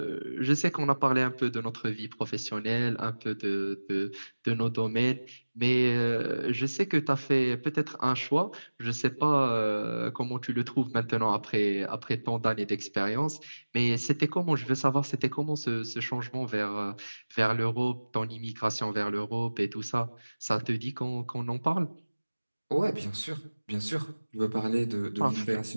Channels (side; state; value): both; inverted; correlation -1.00